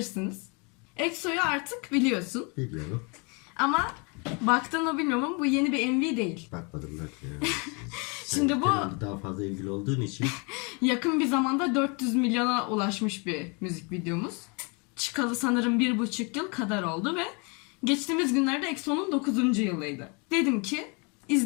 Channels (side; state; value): right; quieter; 32.4 dB